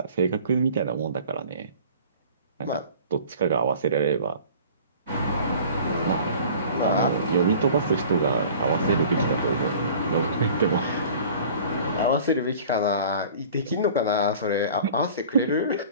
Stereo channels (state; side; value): inverted; both; correlation -0.46